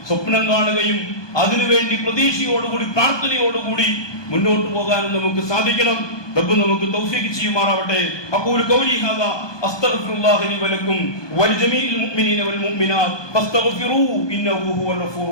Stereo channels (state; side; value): late; right; 1.2 ms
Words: സ്വപ്നം കാണുകയും അതിനുവേണ്ടി പ്രതീക്ഷയോടുകൂടി, പ്രാർത്ഥനയോടുകൂടി മുന്നോട്ട് പോകാനും നമുക്ക് സാധിക്കണം. റബ്ബ് നമുക്ക് തൗഫീഖ് ചെയ്യുമാറാവട്ടെ. അഖൂലു ഖൗലി ഹാദാ അസ്തഗ്ഫിറുല്ലാഹ ലി വലക്കും വലിജമീഇൽ മുഅ്മിനീന വൽ മുഅ്മിനാത്ത് ഫസ്തഗ്ഫിറൂ ഇന്നഹു ഹുവൽ